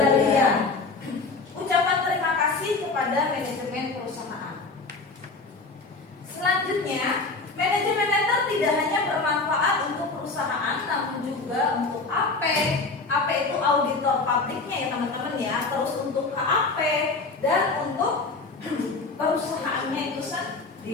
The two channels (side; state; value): right; quieter; 3.8 dB